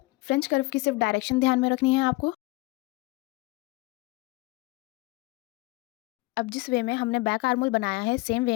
फ्रेंच कर्व की सिर्फ डायरेक्शन ध्यान में रखनी है आपको। अब जिस वे में हमने बैक आर्मोल बनाया है, सेम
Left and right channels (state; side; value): quieter; right; 23.0 dB